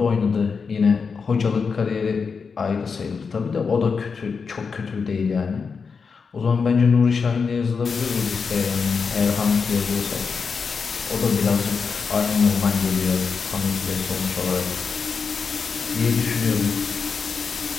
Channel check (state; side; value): quieter; right; 5.4 dB